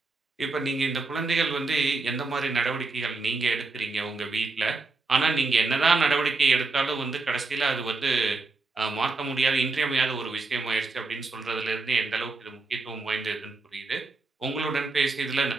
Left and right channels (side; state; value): left; quieter; 3.7 dB